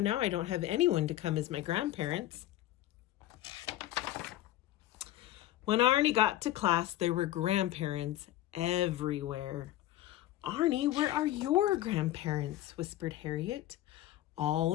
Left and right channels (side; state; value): right; quieter; 14.4 dB